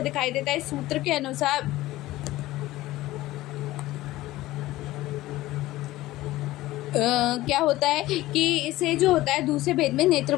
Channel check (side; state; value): right; quieter; 17.0 dB